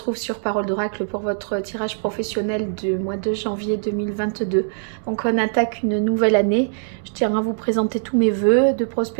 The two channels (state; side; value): silent; left; digital silence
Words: sur Parole d'Oracle pour votre tirage professionnel du mois de janvier 2022. Donc on attaque une nouvelle année. Je tiens à vous présenter tous mes vœux de